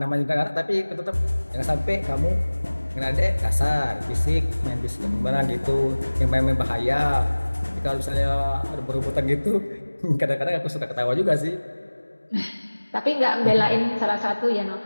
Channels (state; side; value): inverted; both; correlation -1.00